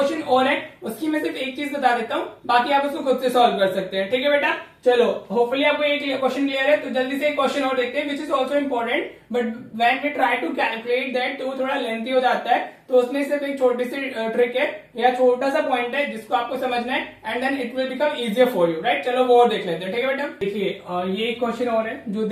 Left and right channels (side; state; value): both; identical; correlation 1.00